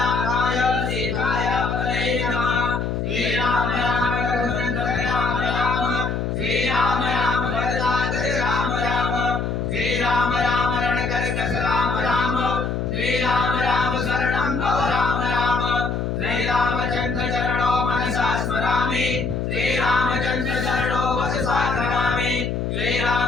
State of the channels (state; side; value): noise; left; hum, 1 dB below the sound